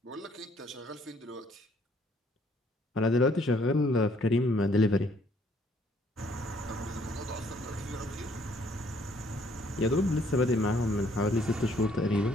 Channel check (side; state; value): both; normal; correlation 0.64